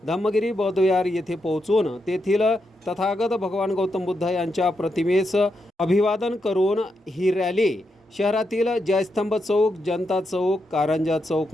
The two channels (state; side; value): normal; both; correlation 0.84